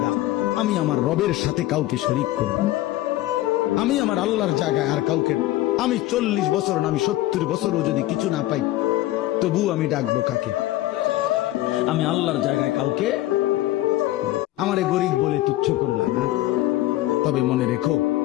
আমি আমার রবের সাথে কাউকে শরীক করব না। আমি আমার আল্লাহর জায়গায় আর কাউকে, আমি 40 বছর না আমি 70 বছরও যদি কিছু না পাই তবু আমি ডাকবো কাকে? আমি আল্লাহর জায়গায় কাউকে। আমারে গরিব বলে তুচ্ছ করলা না, তবে মনে রেখো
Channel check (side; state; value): right; quieter; 16.1 dB